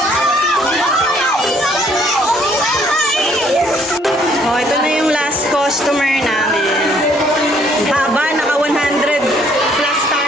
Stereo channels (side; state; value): both; normal; correlation 0.64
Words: Oh, ito na yung last customer namin. Haba, naka 100 plus